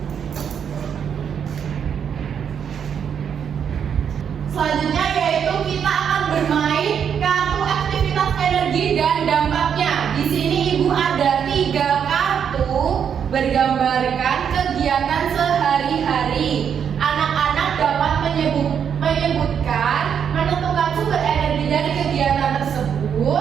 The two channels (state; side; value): quieter; left; 7.8 dB